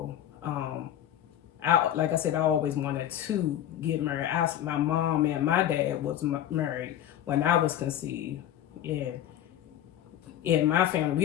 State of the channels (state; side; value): quieter; right; 11.3 dB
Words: like I said, I always wanted to get married. My mom and my dad was married when I was conceived. And in my family, we